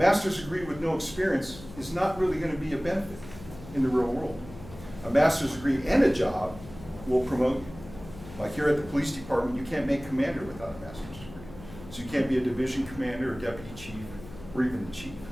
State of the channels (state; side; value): noise; left; hum, 16 dB below the sound